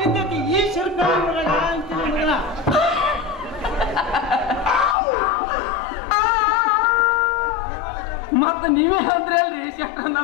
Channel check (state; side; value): drops out; right; at 5.0 s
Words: ಬಿದ್ದೈತಿ ಈ ಶಿರ್ಕ ಅಂತೀನಿ ಮಗಳ. ಮತ್ತ ನೀವೇ ಅಂದ್ರಿ ಅಲ್ರಿ ಶೆಟ್ರ